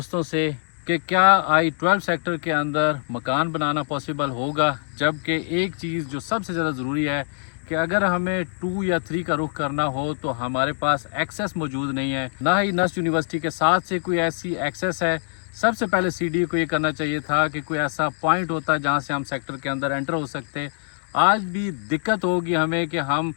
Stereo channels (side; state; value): right; silent; digital silence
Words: से कि क्या I-12 सेक्टर के अंदर मकान बनाना पॉसिबल होगा, जबकि एक चीज़ जो सबसे ज़्यादा ज़रूरी है कि अगर हमें 2 या 3 का रुख करना हो तो हमारे पास एक्सेस मौजूद नहीं है, ना ही नस्ट यूनिवर्सिटी के साथ से कोई ऐसी एक्सेस है। सबसे पहले CDA को ये करना चाहिए था कि कोई ऐसा पॉइंट होता जहाँ से हम सेक्टर के अंदर एंटर हो सकते। आज भी दिक्कत होगी हमें कि हम